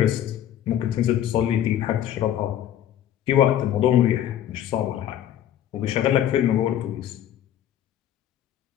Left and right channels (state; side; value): quieter; right; 11.1 dB